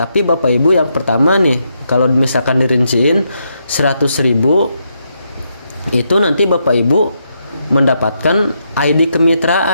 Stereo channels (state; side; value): inverted; both; correlation -0.80